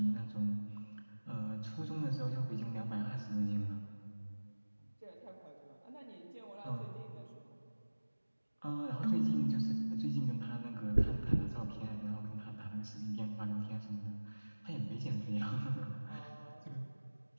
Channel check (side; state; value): both; inverted; correlation -1.00